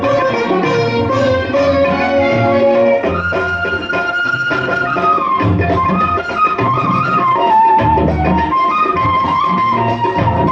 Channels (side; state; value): both; identical; correlation 1.00